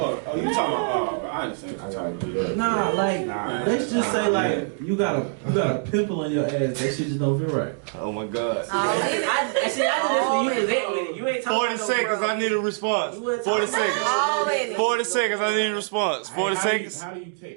you talking about? Bro, I understand. I gotta do that. Nah, like Nah. let's just say like you got a pimple on your ass, that shit just don't feel right. Oh my god. I do this when you was at with it. You ain't talking 40 about seconds, no I need a response. You wasn't 40 talking about seconds. all in it. 40 seconds, I need a response. 40 Hey, seconds. How do you take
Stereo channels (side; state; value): left; silent; digital silence